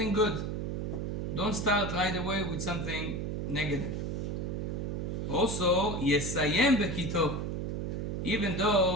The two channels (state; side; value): noise; right; hum, 2 dB below the sound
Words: good. Don't start right away with something negative. Also, יסיים בכי טוב. Even